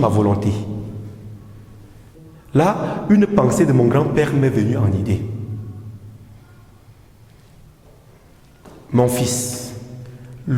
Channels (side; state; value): both; identical; correlation 1.00